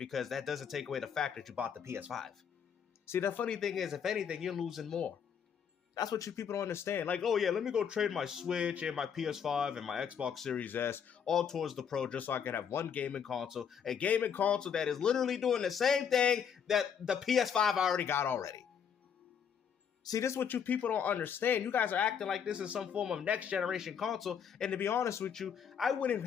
that doesn't take away the fact that you bought the PS5. See, the funny thing is, if anything, you're losing more. That's what you people don't understand. Like, oh yeah, let me go trade my Switch and my PS5 and my Xbox Series S all towards the Pro just so I can have one gaming console. A gaming console that is literally doing the same thing that the PS5 I already got already. See, this is what you people don't understand. You guys are acting like this is some form of next generation console. And to be honest with you, I wouldn't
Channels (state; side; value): quieter; right; 7.6 dB